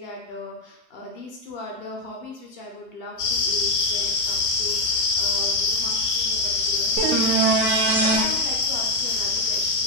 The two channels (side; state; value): both; normal; correlation 0.04